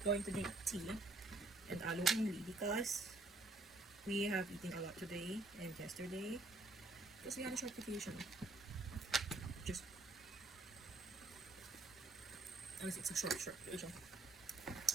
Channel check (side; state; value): left; quieter; 3.1 dB